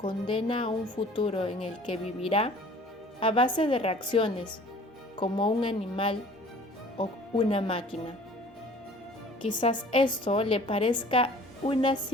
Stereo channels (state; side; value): normal; both; correlation 0.49